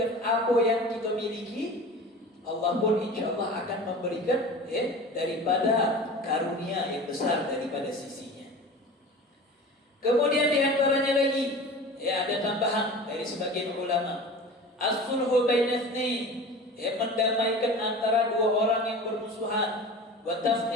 apa yang kita miliki, Allah pun insyaallah akan memberikan daripada karunia yang besar daripada sisinya. Kemudian diantaranya lagi, ada tambahan dari sebagian ulama, as-sulhu baina itsnain, mendamaikan antara dua orang yang bermusuhan, wa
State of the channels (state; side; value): normal; both; correlation 0.36